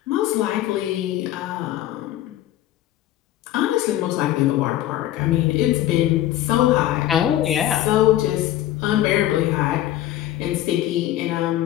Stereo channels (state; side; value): quieter; right; 13.6 dB